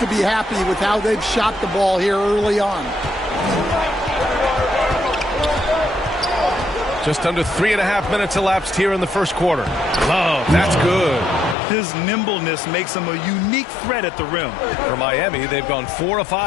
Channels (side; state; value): right; drops out; at 11.6 s